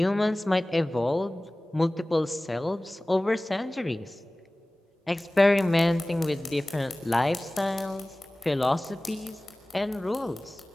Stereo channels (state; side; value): normal; both; correlation 0.98